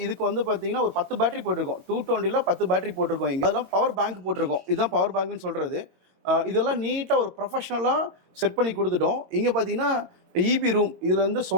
இதுக்கு வந்து பார்த்தீங்கன்னா ஒரு 10 பேட்டரி போட்டிருக்கோம். 220ல் 10 பேட்டரி போட்டிருக்கோம். இங்கே அதெல்லாம் பவர் பேங்க் போட்டிருக்கோம். இதுதான் பவர் பேங்க்னு சொல்கிறது. இதெல்லாம் நீட்டாக ஒரு ப்ரொஃபஷ்னலாக செட் பண்ணி கொடுத்துட்டோம். இங்கே பார்த்தீங்கன்னா இபி ரூம், இதில் வந்து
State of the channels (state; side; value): late; left; 22 ms